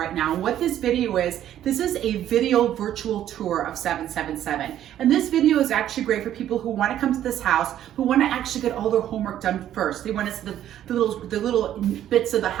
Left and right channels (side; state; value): left; quieter; 11.4 dB